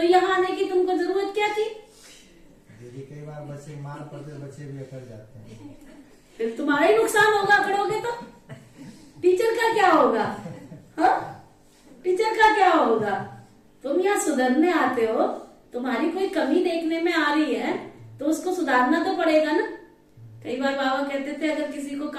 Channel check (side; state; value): both; identical; correlation 1.00